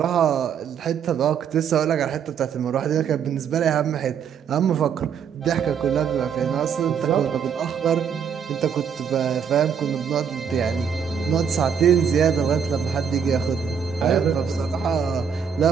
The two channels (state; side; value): quieter; left; 7.3 dB